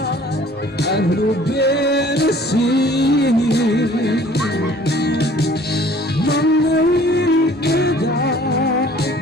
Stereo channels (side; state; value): both; normal; correlation 0.53